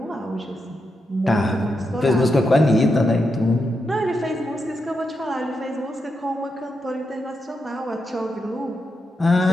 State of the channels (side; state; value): both; normal; correlation 0.85